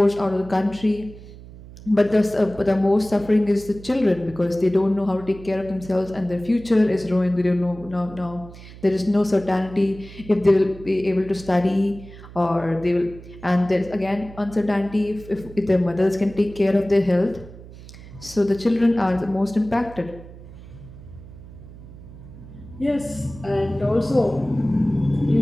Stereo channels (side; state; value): right; noise; hum, 17 dB below the sound